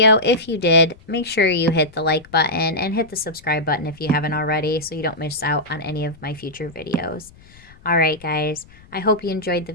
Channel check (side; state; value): left; noise; rumble, 24 dB below the sound